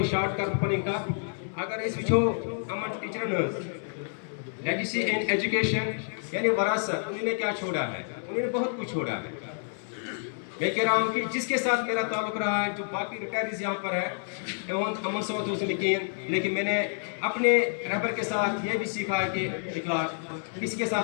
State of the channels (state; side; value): silent; right; digital silence